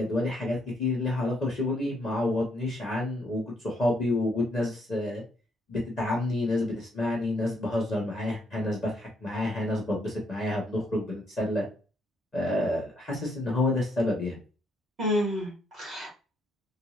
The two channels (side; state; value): both; normal; correlation 0.73